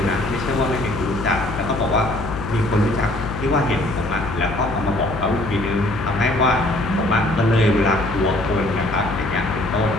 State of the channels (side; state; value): left; noise; hum, 8 dB below the sound